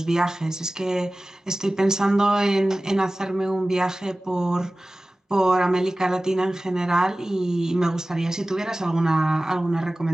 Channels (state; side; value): normal; both; correlation 0.97